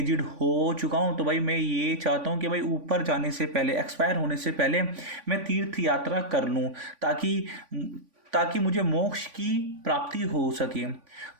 हो चुका हूँ तो भाई मैं ये चाहता हूँ कि भाई ऊपर जाने से पहले, एक्सपायर होने से पहले मैं तीर्थ यात्रा कर लूँ ताकि मुझे मोक्ष की प्राप्ति हो सके।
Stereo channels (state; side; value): late; left; 3.5 ms